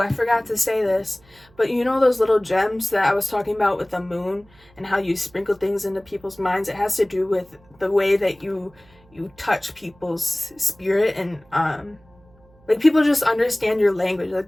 forgot to say this, but you know those little gems that I was talking about with the moon and how you sprinkle things into people's minds? It has to do with the way that you touch people's spirit, and like people just understand your language. Like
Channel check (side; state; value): right; noise; hum, 29 dB below the sound